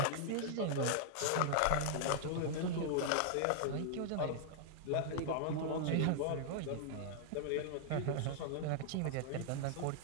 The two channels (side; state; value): both; different; correlation -0.01